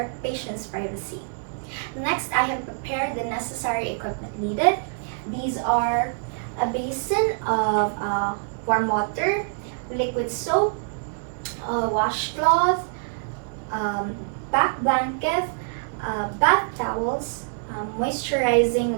patient's privacy. Next, I have prepared the necessary equipment needed. These are a basin of warm water, liquid soap, washcloth, back blanket, bath towels,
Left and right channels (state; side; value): silent; left; digital silence